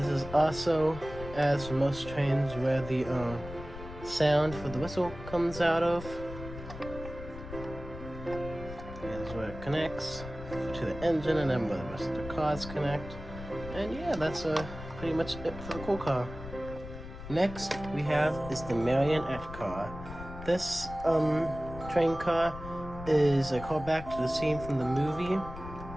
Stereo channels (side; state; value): left; noise; rumble, 12 dB below the sound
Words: is also, as for most trains, where the sound for the whistle comes out of. Here's where it connects to the engine, and then where the rest of the cars connect. And yeah, that's pretty much it for the cool car. Next we have is the marionette car. This train car is a callback to the scene from the movie